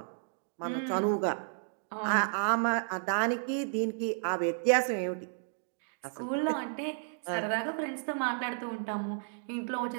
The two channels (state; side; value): silent; left; digital silence